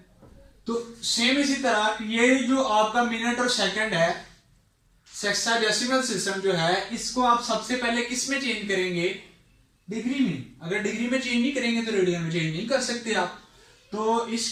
तो सेम इसी तरह ये जो आपका मिनट और सेकंड है, सेक्साडेसिमल सिस्टम जो है, इसको आप सबसे पहले किस में चेंज करेंगे, डिग्री में। अगर डिग्री में चेंज नहीं करेंगे तो रेडियन में चेंज नहीं कर सकते आप। तो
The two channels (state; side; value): identical; both; correlation 1.00